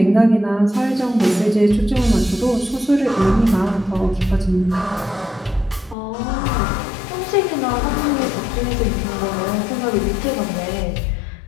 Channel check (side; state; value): right; drops out; at 6.0 s